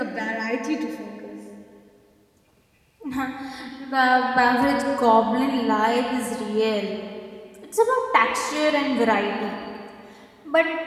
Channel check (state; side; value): identical; both; correlation 1.00